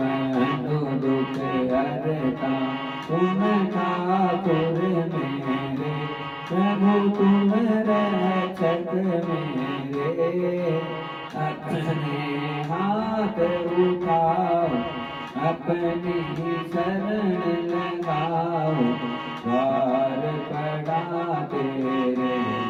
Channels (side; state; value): both; identical; correlation 1.00